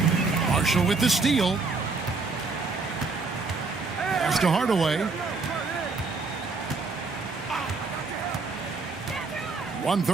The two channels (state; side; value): quieter; left; 4.1 dB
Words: Marshall with the steal. Pass to Hardaway.